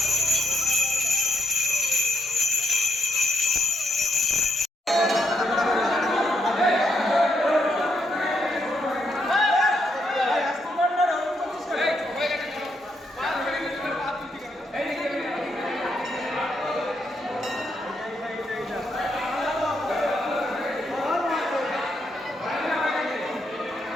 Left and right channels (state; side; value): normal; both; correlation 0.78